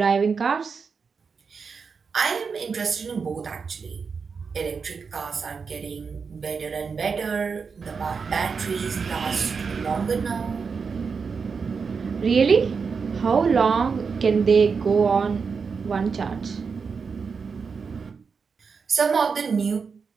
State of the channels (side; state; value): left; quieter; 5.4 dB